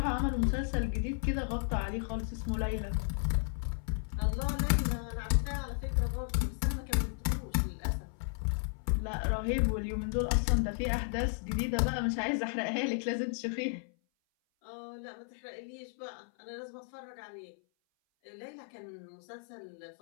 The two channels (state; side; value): silent; right; 55 dB below the other